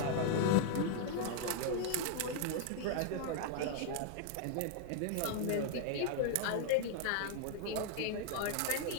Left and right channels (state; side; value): different; both; correlation 0.00